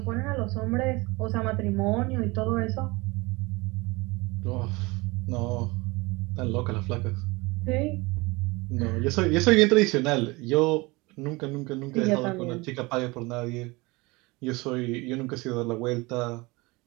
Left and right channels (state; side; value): quieter; left; 24.0 dB